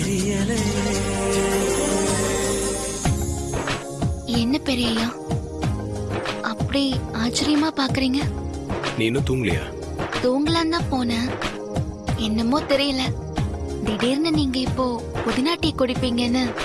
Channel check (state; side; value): identical; both; correlation 1.00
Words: என்ன பெரியயா அப்படி ஆச்சரியமா பாக்குறீங்க? நீ இன்னும் தூங்கலையா? தூங்கலாம் தான் போனேன், என்னமோ தெரியல, திடீர்னு நீங்க இப்போ புதினா டீ குடிப்பீங்கன்னு